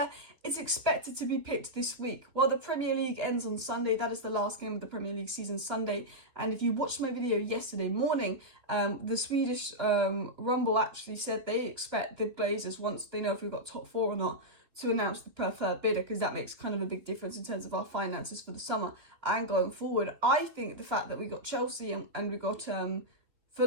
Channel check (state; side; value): late; left; 3.1 ms